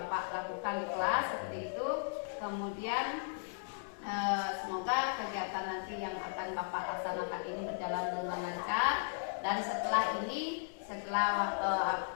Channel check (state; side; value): silent; right; digital silence